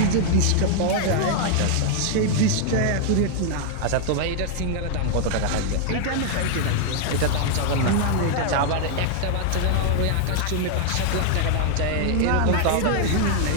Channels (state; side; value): different; both; correlation 0.00